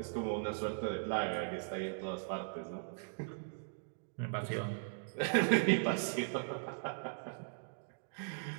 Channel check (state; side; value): silent; left; digital silence